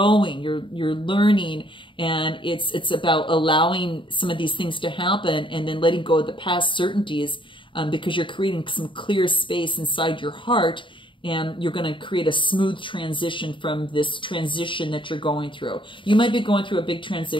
you're learning, and it's about allowing some of these things to happen and then letting go of the past certainties, because you're creating some clear space inside your heart. And you're going to create a smooth transition from this transition that you're going through. You might be going through a big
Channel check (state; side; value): late; right; 0.24 ms